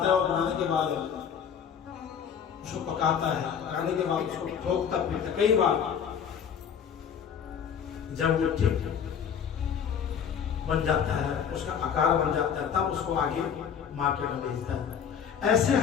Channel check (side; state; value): right; quieter; 7.7 dB